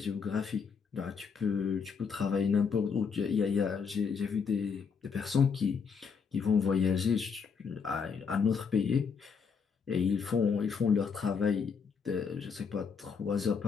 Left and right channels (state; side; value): quieter; right; 5.9 dB